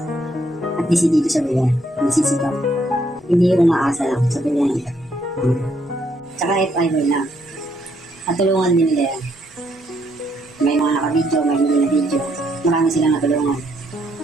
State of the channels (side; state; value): left; noise; rumble, 30 dB below the sound